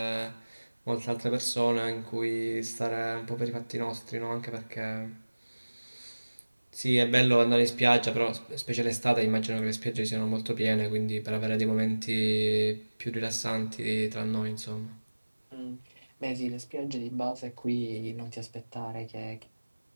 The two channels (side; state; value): both; inverted; correlation -1.00